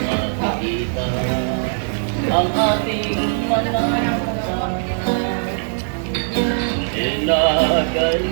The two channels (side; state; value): left; silent; 66 dB below the other